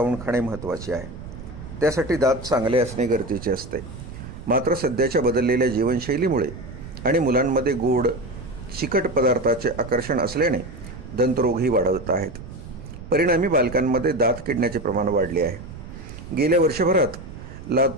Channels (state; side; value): noise; right; rumble, 13 dB below the sound